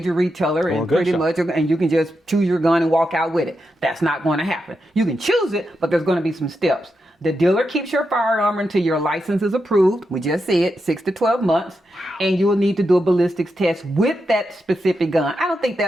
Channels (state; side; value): normal; both; correlation 0.86